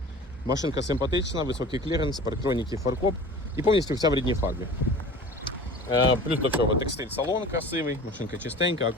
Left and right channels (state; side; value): normal; both; correlation 0.40